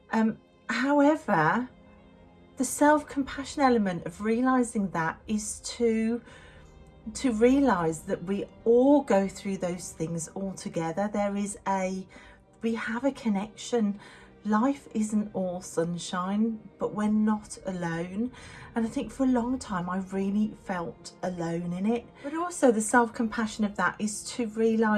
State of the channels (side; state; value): both; identical; correlation 1.00